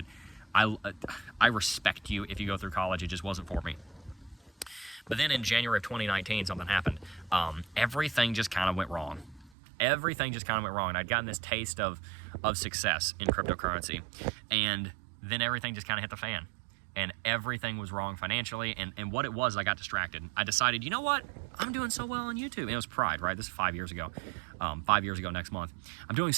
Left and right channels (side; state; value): left; drops out; at 9.5 s